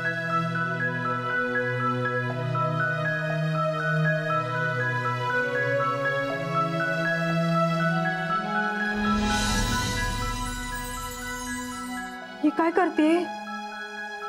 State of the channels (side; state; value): both; identical; correlation 1.00